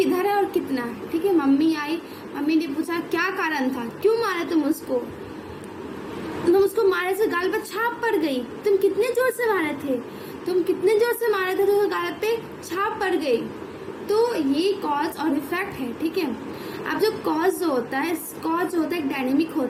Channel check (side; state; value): both; identical; correlation 1.00